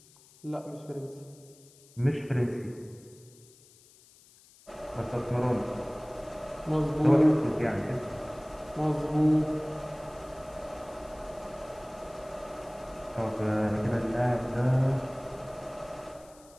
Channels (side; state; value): left; noise; hiss, 25 dB below the sound